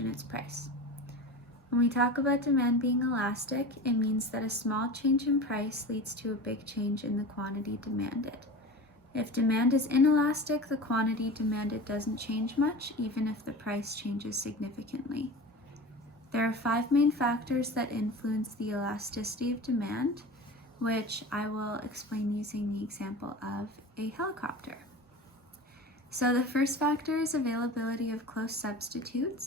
its price. When we talk about demand being elastic, it means that a small change in price leads to a big change in the quantity demanded. If demand is inelastic, the quantity demanded doesn't change much, even if the price changes significantly. There are 5 main factors that influence the elasticity of demand, which I will explain using the example of a helicopter. So the first factor is availability of close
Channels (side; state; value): both; normal; correlation 0.32